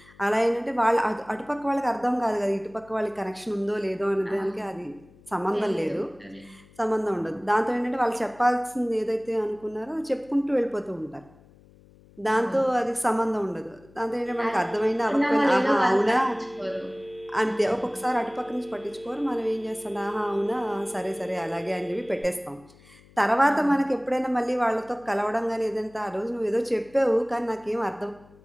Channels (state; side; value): noise; left; hum, 26 dB below the sound